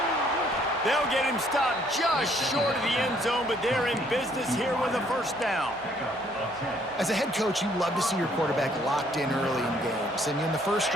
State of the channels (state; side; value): normal; both; correlation 0.64